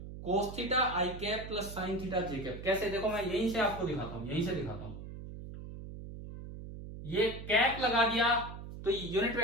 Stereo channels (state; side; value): noise; right; hum, 11 dB below the sound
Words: cos theta I cap plus sine theta J cap. कैसे, देखो मैं यहीं से आपको दिखाता हूं, यहीं से दिखाता हूं। ये कैप लगा दिया तो यूनिट